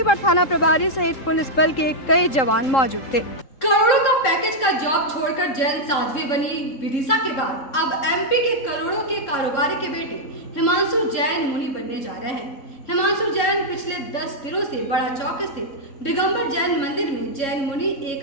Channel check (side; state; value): right; late; 3.7 ms